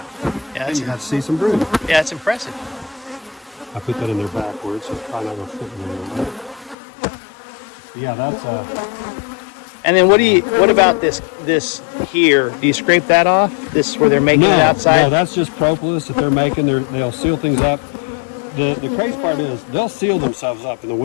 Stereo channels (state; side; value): drops out; right; at 6.8 s